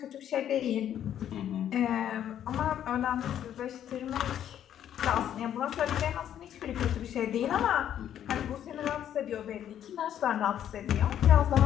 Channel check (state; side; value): quieter; right; 10.4 dB